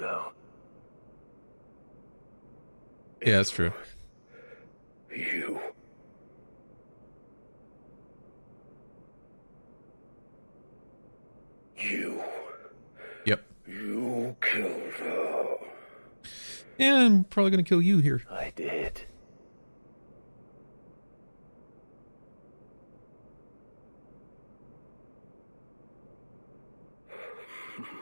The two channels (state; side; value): inverted; both; correlation -1.00